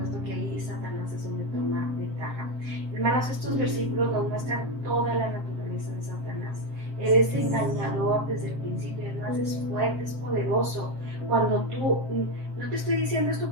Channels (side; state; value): left; late; 7.6 ms